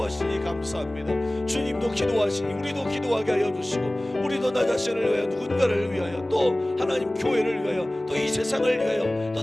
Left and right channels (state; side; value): normal; both; correlation 0.98